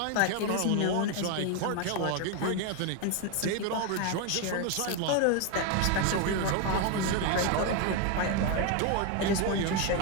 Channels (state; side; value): different; both; correlation 0.01